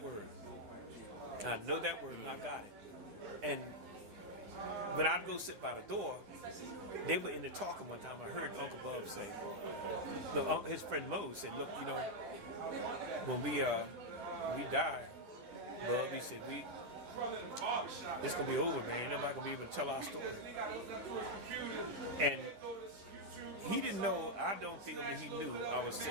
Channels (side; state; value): left; late; 10 ms